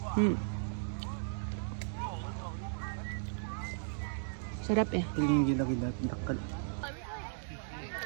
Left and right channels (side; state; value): left; silent; digital silence